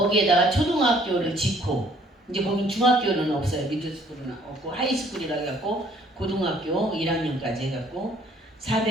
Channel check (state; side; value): normal; both; correlation 0.60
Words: 초등학교를 짓고 이제 거긴 중학교는 없어요. 미들스쿨은 없고 하이스쿨이라 해갖고 고등학교 1학년까지 해갖고